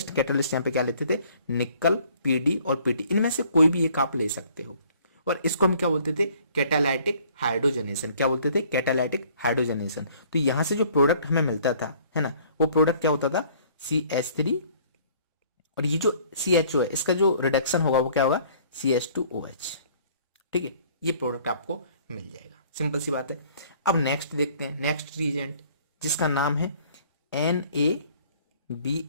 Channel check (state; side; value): inverted; both; correlation -0.57